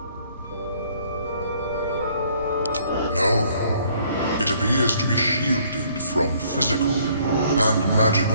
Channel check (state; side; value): inverted; both; correlation -0.63